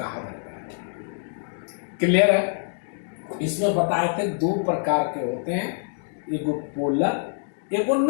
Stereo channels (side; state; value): right; silent; digital silence